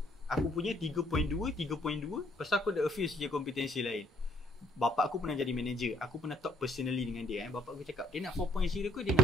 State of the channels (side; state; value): both; normal; correlation 0.66